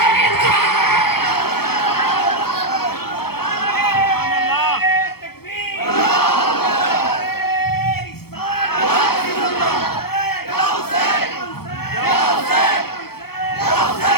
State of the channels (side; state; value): right; late; 0.95 ms